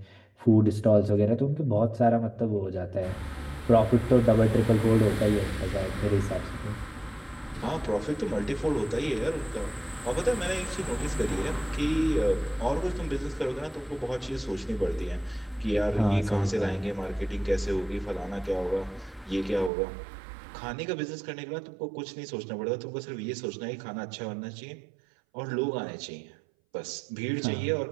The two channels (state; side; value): drops out; left; at 19.7 s